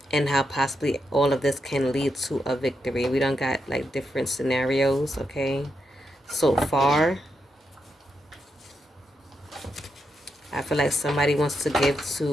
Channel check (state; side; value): normal; both; correlation 0.83